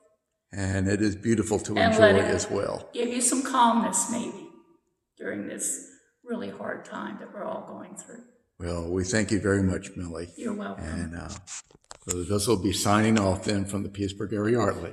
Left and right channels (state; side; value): identical; both; correlation 1.00